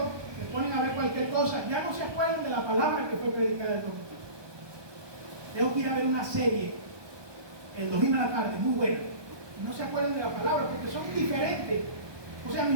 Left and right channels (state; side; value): late; left; 1.2 ms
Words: se ponen a ver cualquier cosa, ya no se acuerdan de la palabra que fue predicada el domingo. Tengo que ir a ver una serie el domingo a la tarde, muy buena, y no se acuerdan de la palabra porque son diferentes. O sea,